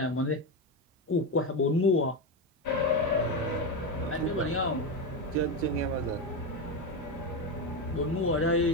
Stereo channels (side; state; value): both; normal; correlation 0.14